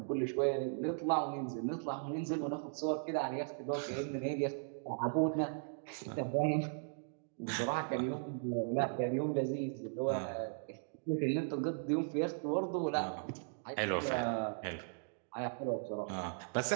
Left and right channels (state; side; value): silent; left; digital silence